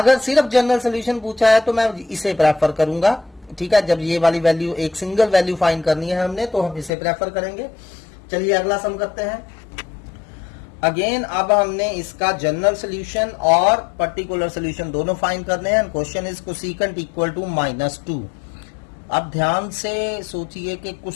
सिर्फ जनरल सोल्यूशन पूछा है तो मैं इसे प्रेफर करूंगा। ठीक है, जब ये वाली वैल्यू एक सिंगल वैल्यू फाइंड करनी है हमने तो हम इसे प्रेफर करेंगे। चलिए अगला सम करते हैं। अगेन अब हमने इसका जनरल सोल्यूशन और पर्टिकुलर सोल्यूशन दोनों फाइंड करने हैं। Question is cosecant equal to -2। अब ध्यान से सोचिए कि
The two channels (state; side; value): drops out; right; at 6.9 s